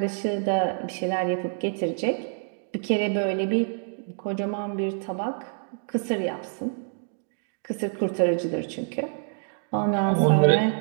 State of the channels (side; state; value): left; silent; digital silence